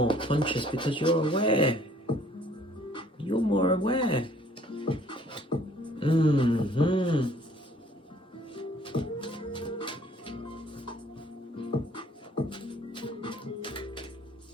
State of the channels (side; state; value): both; normal; correlation 0.58